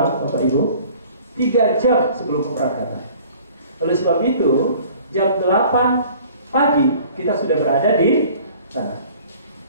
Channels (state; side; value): inverted; both; correlation -0.50